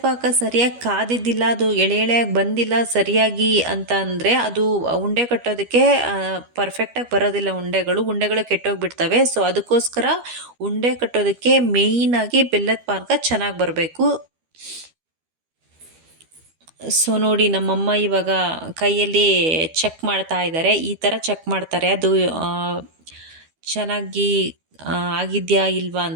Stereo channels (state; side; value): late; left; 12 ms